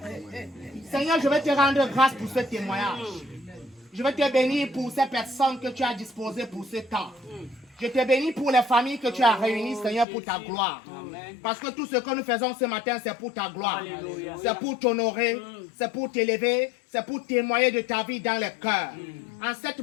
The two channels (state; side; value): drops out; right; at 10.1 s